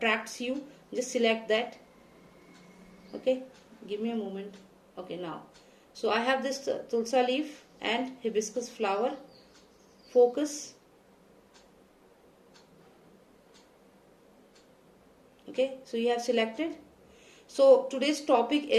you, just select that. Okay, give me a moment. Okay, now, so I have this tulsa leaf and hibiscus flower. Focus. Okay, so you have selected. So today's topic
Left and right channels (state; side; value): identical; both; correlation 1.00